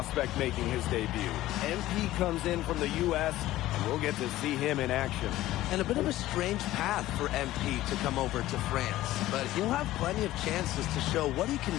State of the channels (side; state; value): right; quieter; 15.5 dB